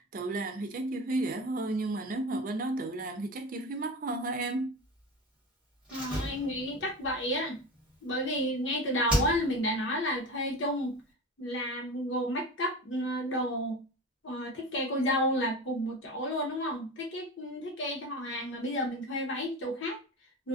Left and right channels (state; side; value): normal; both; correlation 0.29